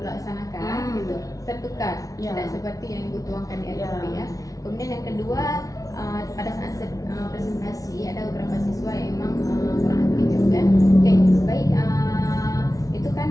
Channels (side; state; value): right; late; 0.17 ms